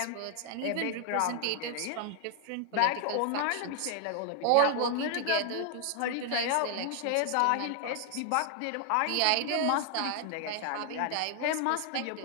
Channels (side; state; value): both; different; correlation 0.00